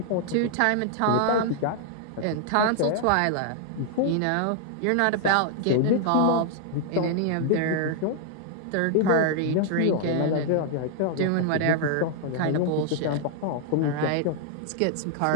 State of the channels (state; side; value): different; both; correlation -0.01